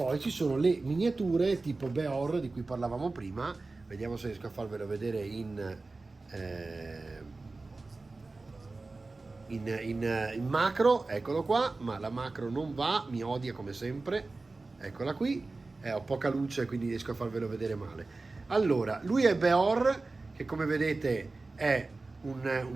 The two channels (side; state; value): left; quieter; 3.5 dB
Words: ci sono le miniature tipo Beor di cui parlavamo prima, vediamo se riesco a farvelo vedere in macro, eccolo qua, ma la macro non va, mi odia come sempre, eccola qui. Ho poca luce, quindi riesco a farvelo vedere male. Allora, lui è Beor, che come vedete è